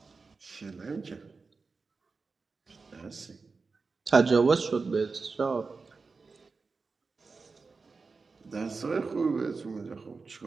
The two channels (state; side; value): quieter; left; 4.4 dB